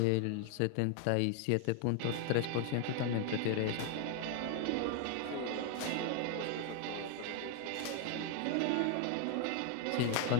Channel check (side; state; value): both; different; correlation 0.00